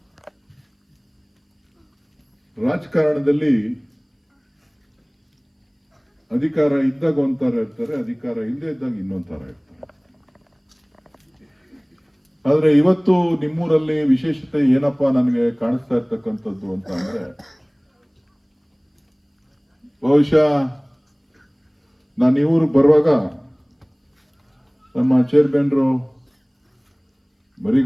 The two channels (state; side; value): identical; both; correlation 1.00